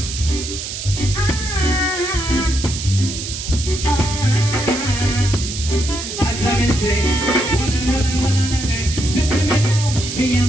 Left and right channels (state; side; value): noise; right; hiss, 7 dB below the sound